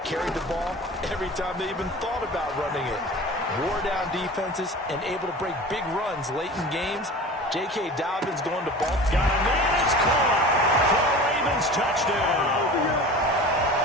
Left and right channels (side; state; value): both; normal; correlation 0.37